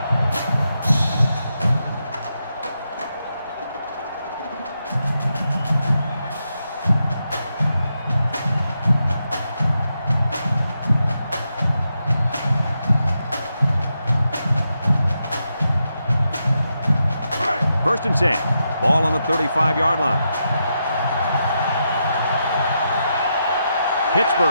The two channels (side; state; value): both; inverted; correlation -0.84